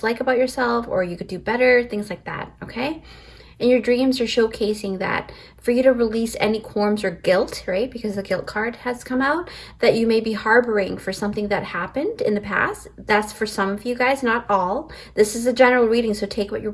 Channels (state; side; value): identical; both; correlation 1.00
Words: about yourself, or you could do better, things like that, okay? And your dreams are showcasing that for you to release any qualms or guilt, right? Because the guilt card has come out, that you may be harboring for something that happened in the past. That's for some of you guys, not all. This is a general reading, so take what you